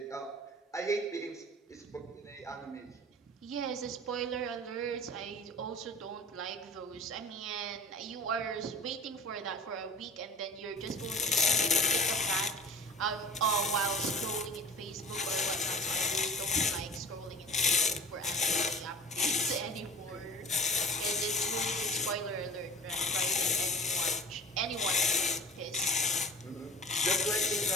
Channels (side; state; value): both; normal; correlation 0.42